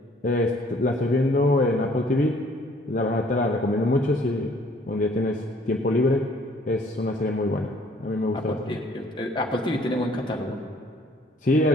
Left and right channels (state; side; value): normal; both; correlation 0.59